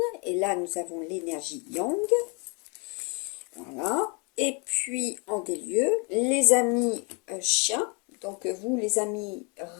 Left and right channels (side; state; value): right; quieter; 32.8 dB